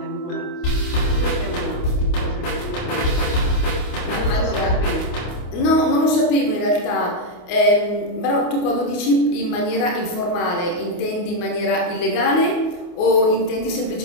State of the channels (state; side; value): late; right; 28 ms